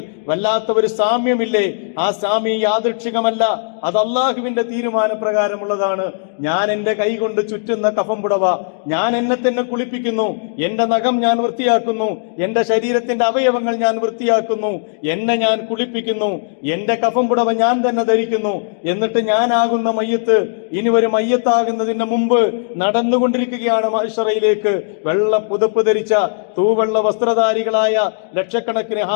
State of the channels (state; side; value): silent; right; digital silence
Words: വല്ലാത്ത ഒരു സാമ്യമില്ലേ? ആ സാമ്യം യാദൃച്ഛികമല്ല, അത് അള്ളാഹുവിന്റെ തീരുമാനപ്രകാരമുള്ളതാണ്. ഞാൻ എന്റെ കൈ കൊണ്ട് ചുറ്റുന്ന കഫം പുടവ, ഞാൻ എന്നെ തന്നെ കുളിപ്പിക്കുന്നു, എന്റെ നഖം ഞാൻ വൃത്തിയാക്കുന്നു, എന്റെ ശരീരത്തിന്റെ അവയവങ്ങൾ ഞാൻ വൃത്തിയാക്കുന്നു, എന്നെ ഞാൻ കുളിപ്പിക്കുന്നു, എന്റെ കഫം പുടവ ഞാൻ തന്നെ ധരിക്കുന്നു. എന്നിട്ട് ഞാനാകുന്ന മയ്യത്ത് ഇനി ഒരു മയ്യത്താകുന്നതിന് മുമ്പ് നടന്നുകൊണ്ടിരിക്കുകയാണ് മഹ്ശറയിലേക്ക്. വെള്ള പുതപ്പ് ധരിച്ച തൂവെള്ള വസ്ത്രധാരികളായ ലക്ഷക്കണക്കിന്